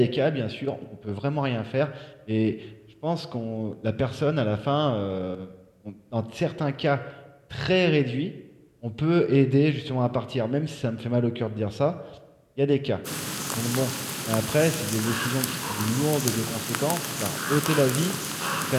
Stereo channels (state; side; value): identical; both; correlation 1.00